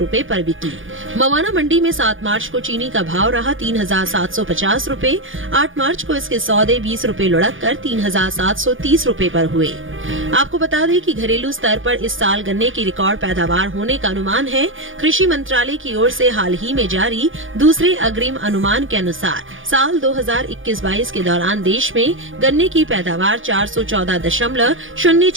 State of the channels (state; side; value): late; left; 0.58 ms